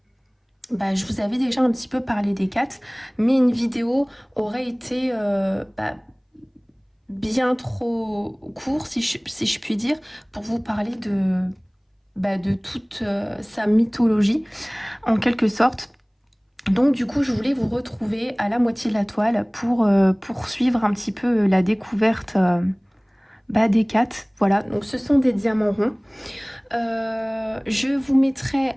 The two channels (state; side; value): identical; both; correlation 1.00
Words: je vous avais déjà un petit peu parlé des 4, mais une vidéo aurait été bien trop courte, si je puis dire, pour vous parler de toute sa mythologie, en quelque sorte. Donc du coup, je voulais vous retrouver à la moitié de la toile pour poursuivre un petit peu la découverte des 4. Voilà, donc ce sont des diamants ronds. Je vous mettrai